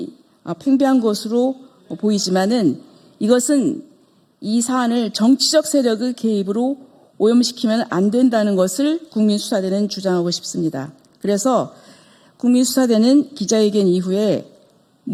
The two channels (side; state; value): both; identical; correlation 1.00